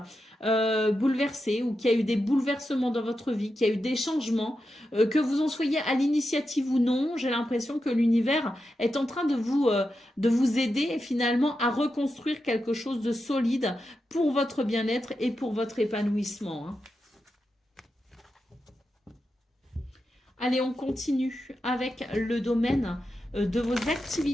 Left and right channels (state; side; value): normal; both; correlation 0.88